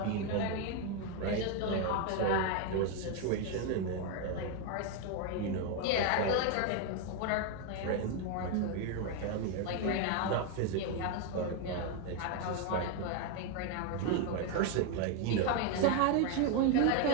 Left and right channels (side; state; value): both; different; correlation 0.01